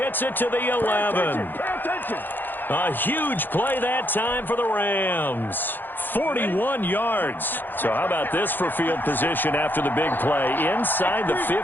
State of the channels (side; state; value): right; late; 0.091 ms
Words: it to the 11. A huge play that time for the Rams. 41 yards. So how about this for field position after the big play? Inside the